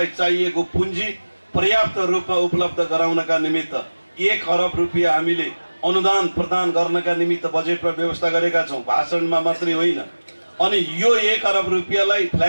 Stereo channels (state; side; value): inverted; both; correlation -1.00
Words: चाहिएको पुँजी पर्याप्त रूपमा उपलब्ध गराउनका निमित्त 1 अरब रुपियाँ हामीले अनुदान प्रदान गर्नका निमित्त बजेटमा व्यवस्था गरेका छौँ, भाषणमा मात्रै होइन। अनि यो 1 अरब रुपियाँलाई